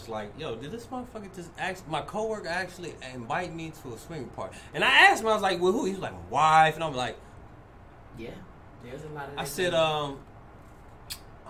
like, yo, did this motherfucker my coworker actually invite me to a swinger party? And I asked him, I was like, well, who? He was like, my wife, and I'm like, Yeah. There's a lot of. I that said, going on.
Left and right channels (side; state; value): both; identical; correlation 1.00